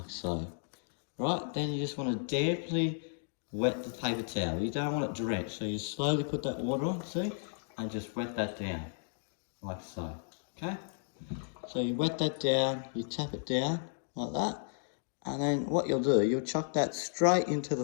so. Right, then you just want to damply wet the paper towel. You don't want it drenched, so you slowly put that water on, see, and just wet that down like so, okay? So you wet that down, you tap it down like that. And then what you'll do, you'll chuck that straight into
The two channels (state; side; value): silent; right; digital silence